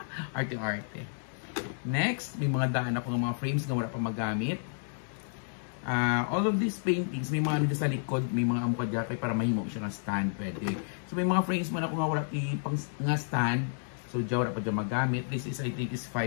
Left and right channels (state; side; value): silent; right; digital silence